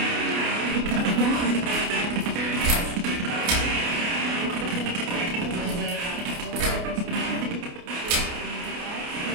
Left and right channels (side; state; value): left; late; 29 ms